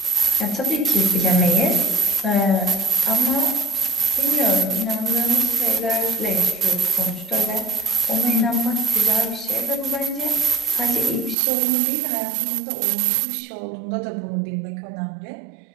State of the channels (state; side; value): drops out; left; at 11.4 s